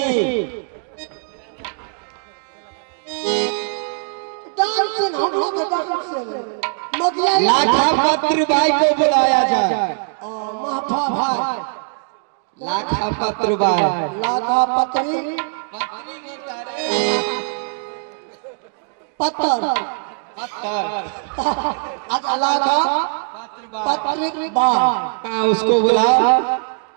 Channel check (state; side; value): silent; left; 56 dB below the other